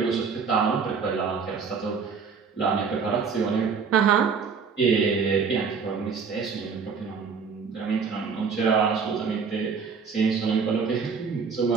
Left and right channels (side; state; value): left; quieter; 5.7 dB